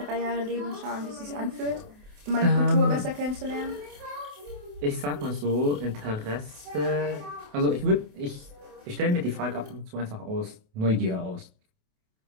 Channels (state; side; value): late; left; 28 ms